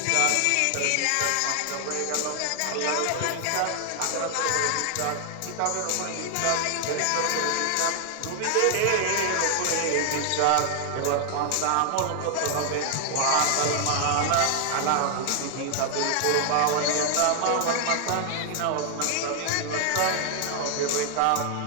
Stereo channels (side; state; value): both; different; correlation 0.00